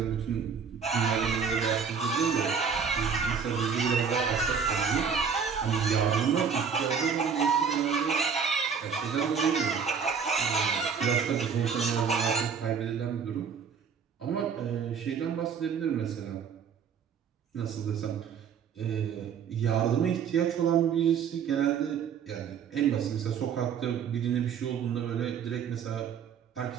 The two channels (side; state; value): left; quieter; 6.7 dB